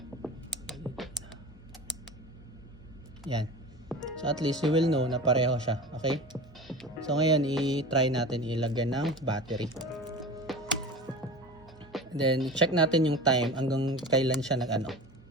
Yan. So, at least you will know na pareho siya. Okay? So, ngayon, i-try natin ilagyan ng battery. Then, check natin yung time hanggang kailan siya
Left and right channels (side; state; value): both; normal; correlation 0.33